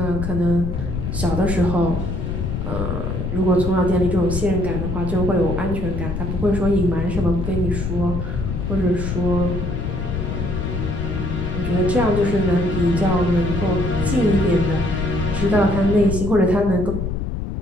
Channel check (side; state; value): left; noise; rumble, 3 dB below the sound